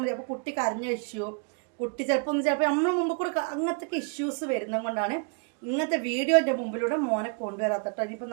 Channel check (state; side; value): quieter; left; 38.3 dB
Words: മതി. അപ്പോൾ കുട്ടി കരഞ്ഞ ഇഷ്യൂ, കുട്ടി ചിലപ്പോൾ നമ്മൾ മുമ്പ് കൂടെ അങ്ങനത്തെ ഇഷ്യൂസ് വരുന്നത് കൊണ്ടാണ് ഇങ്ങനത്തെ വീഡിയോൻ്റെ മുമ്പിലൂടെ മോനെ കൊണ്ടുവരാത്തട്ടോ. ഇനിയിപ്പോൾ